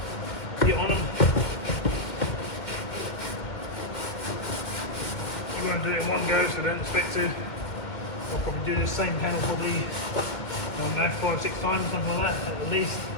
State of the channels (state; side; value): late; right; 2.2 ms